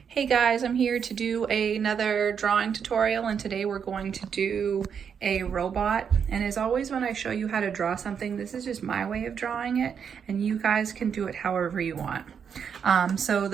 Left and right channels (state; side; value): quieter; left; 7.2 dB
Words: Hey guys, I'm here to do another drawing tutorial, and today we're going to do a robot. And as always, when I show you how to draw something, this is just my way of drawing it, and you guys can do it however you want. So